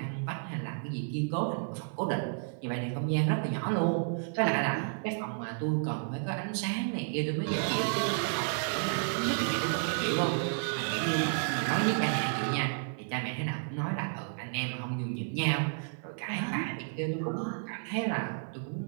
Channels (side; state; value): left; silent; 56 dB below the other